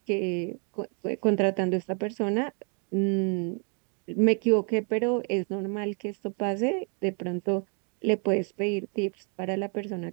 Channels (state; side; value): quieter; left; 38.8 dB